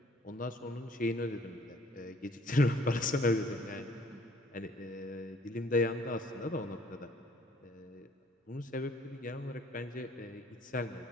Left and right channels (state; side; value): normal; both; correlation 0.58